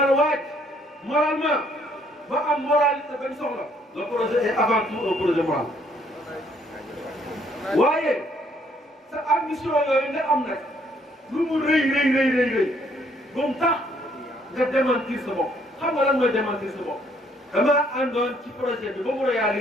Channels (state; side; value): normal; both; correlation 0.66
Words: waaj moralement ba am moralité bañ soxla le projet est avant tout un projet moral waaye sa ambition yooyu nga am nag lu mu rëy ba mu tax nga démentir sa bopp xam nga lan mooy démentir sa bopp damaa àndoon ci projet bi ba mu